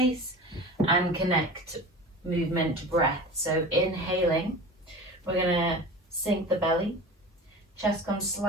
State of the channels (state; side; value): normal; both; correlation 0.34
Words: and connect movement to breath. So inhaling, we're gonna sink the belly. Chest comes